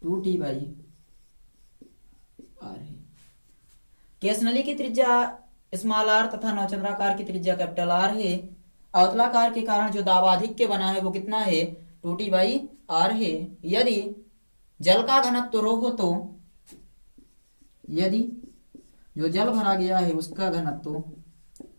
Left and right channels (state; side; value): inverted; both; correlation -1.00